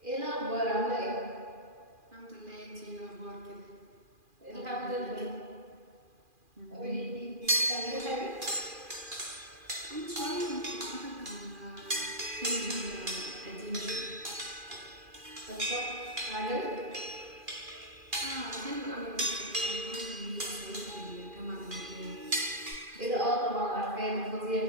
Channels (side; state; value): left; late; 2.4 ms